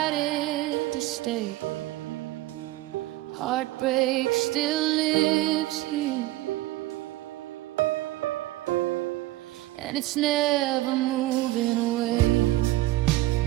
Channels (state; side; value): quieter; left; 17.5 dB